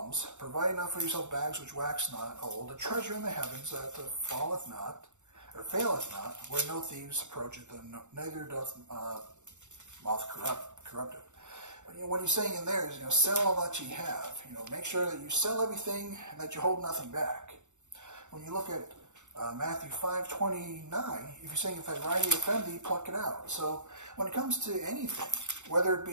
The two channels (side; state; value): left; late; 0.84 ms